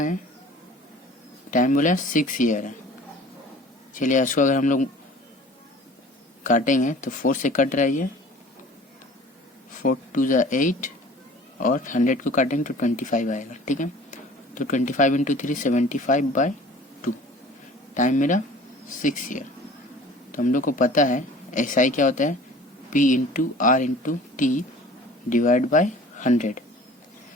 टाइम बोला 6 ईयर है। चलिए इसको अगर हम लोग काटेंगे तो 4 से कट रहा है ये, 4 2 जा 8 और 100 को काटेंगे तो 25 आएगा। ठीक है, तो 25 इंटू 3 75/2। टाइम मेरा 6 ईयर। तो हम लोग को पता है SI क्या होता है, P into R into T divide by 100।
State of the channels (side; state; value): both; normal; correlation 0.46